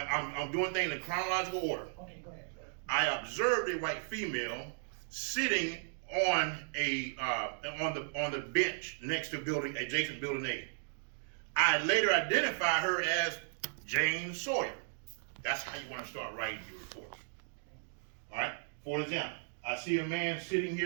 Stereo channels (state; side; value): silent; left; digital silence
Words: doing things in chronological order. Okay, go ahead. I observed a white female sitting on the bench next to adjacent building A. I later identified her as Jane Sawyer. That's how you want to start writing your reports. All right. For example, I see a man sitting